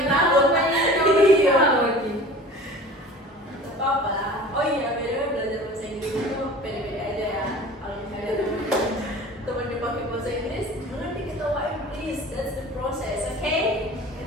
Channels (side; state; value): both; normal; correlation 0.42